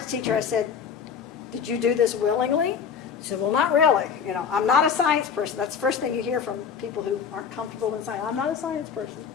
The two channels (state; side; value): quieter; right; 6.8 dB